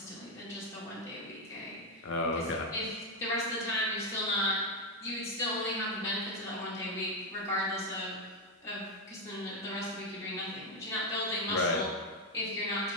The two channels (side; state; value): both; normal; correlation 0.05